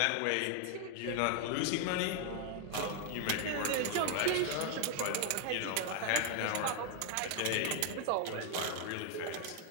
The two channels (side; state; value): both; different; correlation 0.00